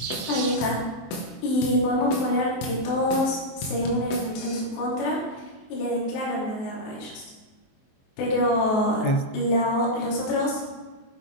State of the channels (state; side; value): late; right; 23 ms